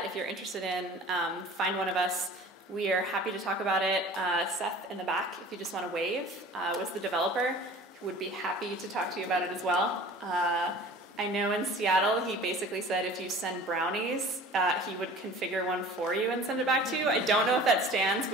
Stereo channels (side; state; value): both; normal; correlation 0.44